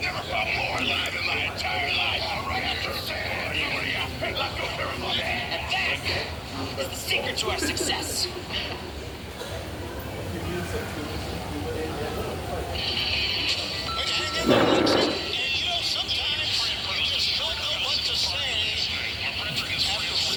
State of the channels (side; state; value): both; identical; correlation 1.00